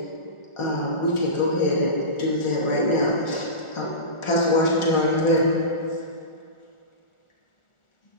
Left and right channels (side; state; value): right; late; 1.4 ms